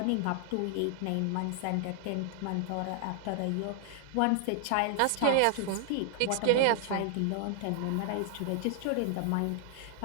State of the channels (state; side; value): different; both; correlation -0.01